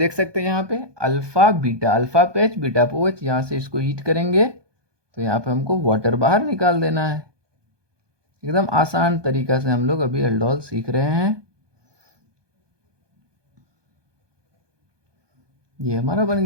सकते हैं यहाँ पे अल्फा बीटा, अल्फा पे H, बीटा पे OH। यहाँ से इसको हीट करेंगे तो यहाँ पे हमको वाटर बाहर निकाल देना है। एकदम आसान तरीका से हम लोग अभी एल्डोल सीख रहे हैं। ये हमारा बन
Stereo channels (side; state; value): left; late; 1.2 ms